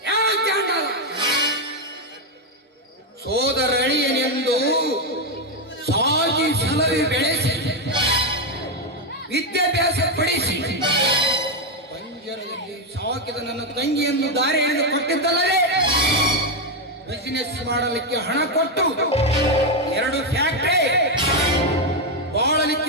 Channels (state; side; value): normal; both; correlation 0.05